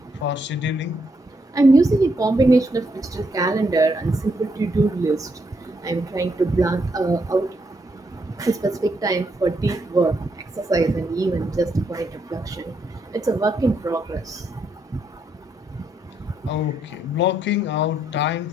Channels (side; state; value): both; normal; correlation 0.77